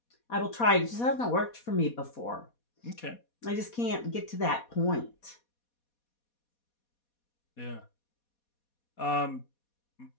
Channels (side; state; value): right; late; 4.2 ms